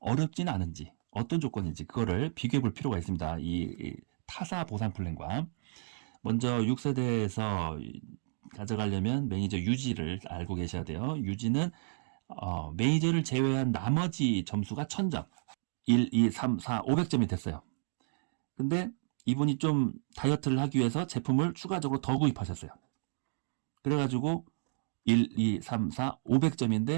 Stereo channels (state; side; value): silent; left; digital silence